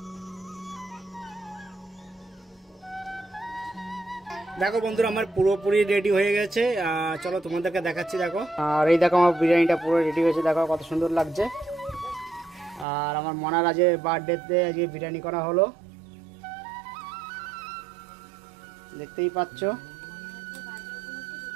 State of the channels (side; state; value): left; drops out; at 12.9 s